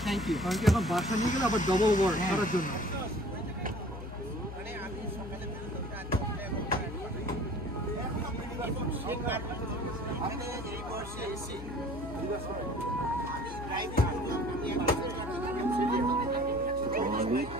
you. কারণ কি এখন বাসা নিয়ে গেলে আবার ডবল ওয়ার্ক করার জন্য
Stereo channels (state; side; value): noise; left; hum, 10 dB below the sound